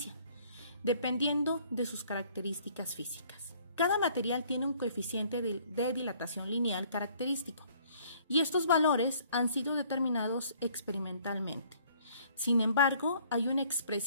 dependiendo de sus características físicas. Cada material tiene un coeficiente de dilatación lineal característico y estos valores han sido determinados experimentalmente. Sin embargo, hay una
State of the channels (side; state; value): both; inverted; correlation -0.59